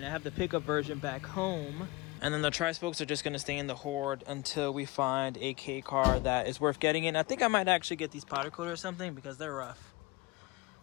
I have the pickup version back home, and then the tri-spokes are just gonna stay in the Horde until we find a K car that is worth getting in. I think I might actually get these powder coated or something because they're rough.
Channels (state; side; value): quieter; right; 23.1 dB